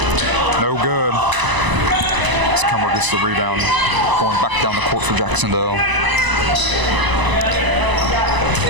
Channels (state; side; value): late; left; 1.0 ms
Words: No good. As Cummer gets the rebound. Going back down the court for Jac-Cen-Del.